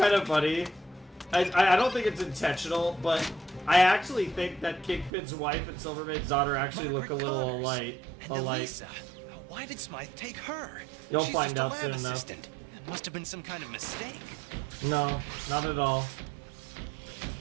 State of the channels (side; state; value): left; drops out; at 5.1 s